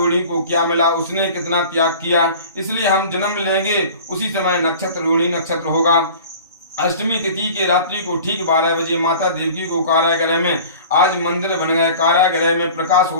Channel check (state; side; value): inverted; both; correlation -0.42